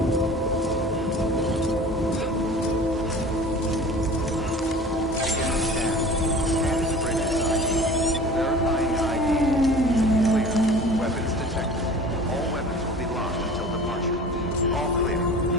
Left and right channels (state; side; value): normal; both; correlation 0.41